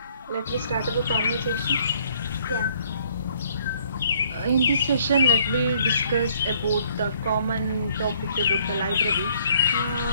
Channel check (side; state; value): both; inverted; correlation -0.63